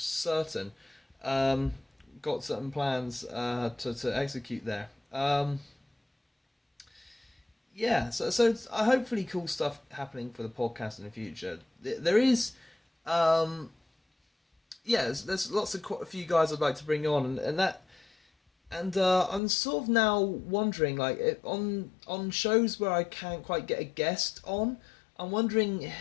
Got certain plans to execute there. So hopefully cool stuff happening for the podcast in the future. There is, there's lots of quite a few guys I'd like to bring on, and I'm sort of now wondering, like, on shows where I can't quite get a guest on, I'm wondering.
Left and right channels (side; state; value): right; drops out; at 19.4 s